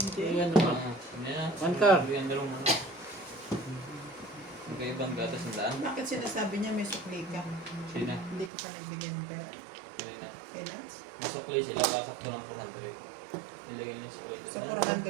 Ayan naman. One car. Yung dalawang manok. Magkaibang gatos ng daan. Bakit sinasabi niya may sukli ka? Sina? Hindi ko pa nagbigyan ng pera. Kanina. Kay Lance? Masukli sila. Kasakto ng 400. Nilagay nila yung sukli. So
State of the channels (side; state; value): left; drops out; at 8.5 s